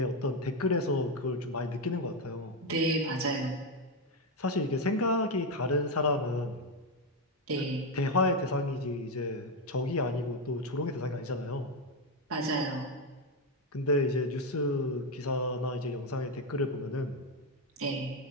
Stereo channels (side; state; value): both; normal; correlation 0.07